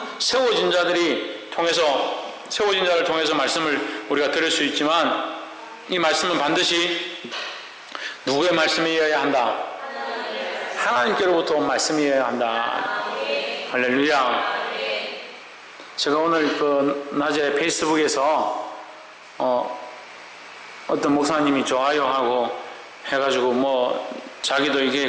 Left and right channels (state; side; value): identical; both; correlation 1.00